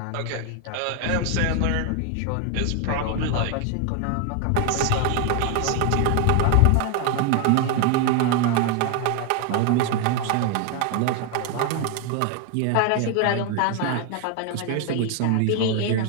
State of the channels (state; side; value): different; both; correlation 0.01